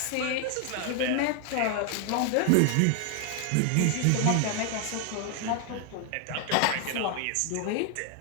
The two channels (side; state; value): both; different; correlation 0.00